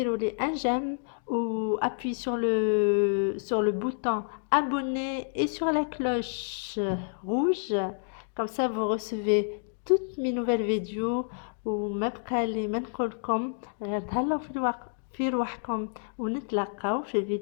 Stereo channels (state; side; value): silent; right; digital silence